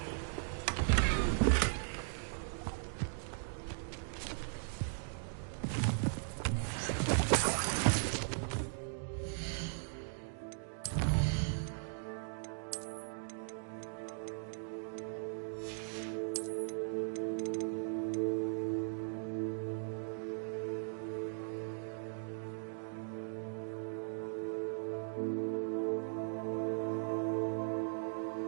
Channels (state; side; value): silent; left; digital silence